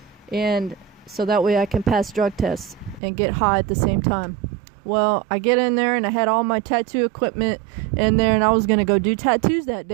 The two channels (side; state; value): left; drops out; at 3.0 s